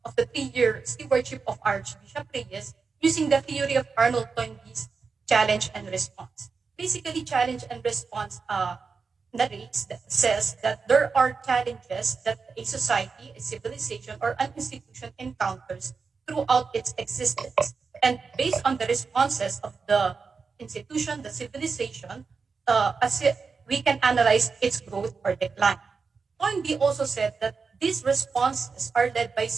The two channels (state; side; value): quieter; left; 5.0 dB